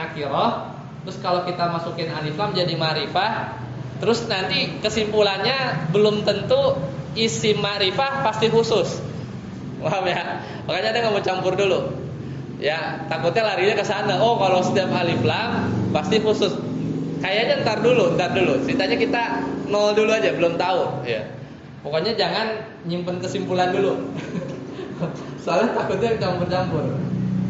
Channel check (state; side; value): identical; both; correlation 1.00